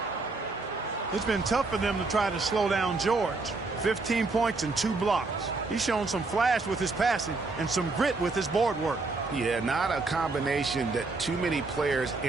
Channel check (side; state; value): left; quieter; 3.7 dB